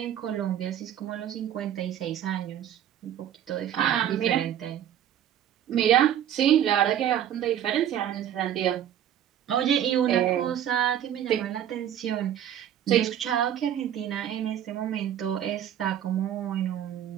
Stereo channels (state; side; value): quieter; left; 10.6 dB